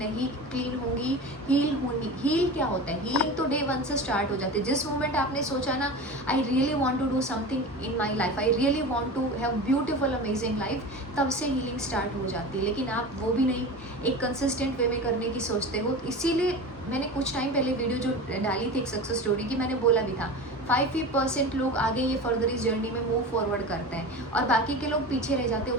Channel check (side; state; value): both; normal; correlation 0.30